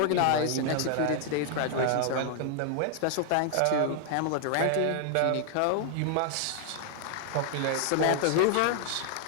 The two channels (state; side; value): different; both; correlation 0.00